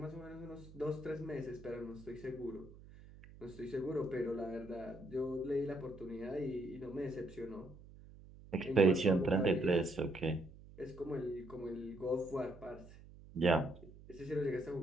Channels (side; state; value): right; noise; hum, 19 dB below the sound